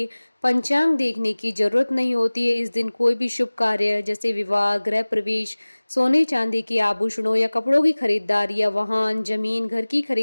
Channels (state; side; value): inverted; both; correlation -1.00